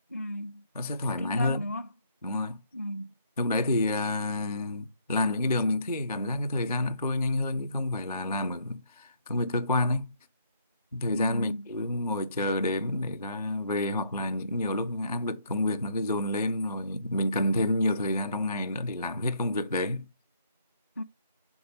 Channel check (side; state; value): both; inverted; correlation -0.68